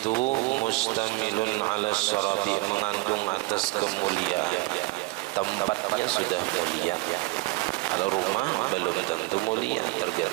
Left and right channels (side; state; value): left; quieter; 23.8 dB